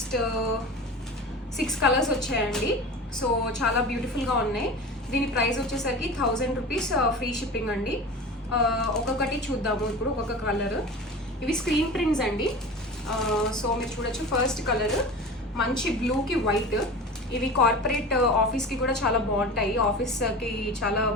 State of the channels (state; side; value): normal; both; correlation 0.34